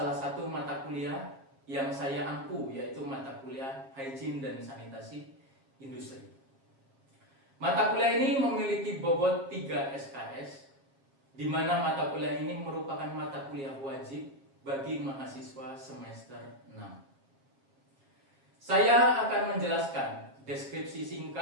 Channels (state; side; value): late; left; 7.4 ms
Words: satu mata kuliah yang saya ampu, yaitu mata kuliah Hygiene dan Sanitasi Industri. Mata kuliah ini memiliki bobot 3 SKS, di mana mata kuliah ini merupakan mata kuliah wajib bagi mahasiswa semester 6. Saya akan menjelaskan deskripsi